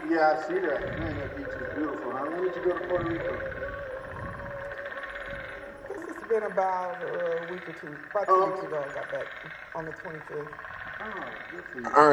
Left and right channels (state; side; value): identical; both; correlation 1.00